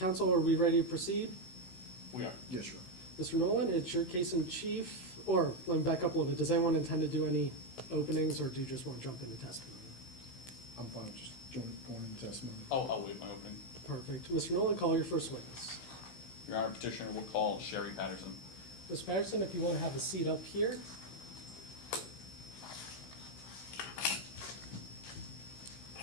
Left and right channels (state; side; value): late; right; 16 ms